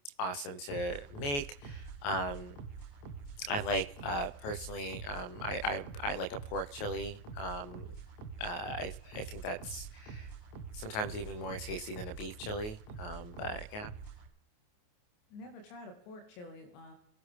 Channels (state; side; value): late; right; 28 ms